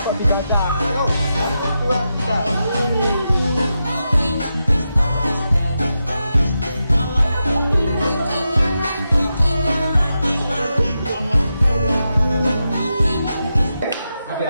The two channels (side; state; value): both; inverted; correlation -0.88